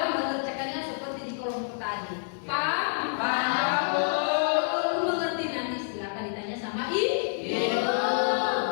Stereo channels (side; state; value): right; silent; 59 dB below the other